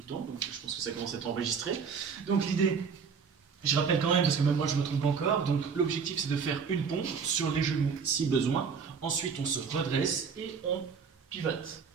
temps, donc je pense que ça commence à être enregistré. Donc, l'idée, je rappelle quand même, parce que même moi je me trompe encore, donc l'objectif c'est de faire une pompe sur les genoux si besoin. Ensuite, on se redresse et on pivote.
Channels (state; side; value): quieter; left; 6.0 dB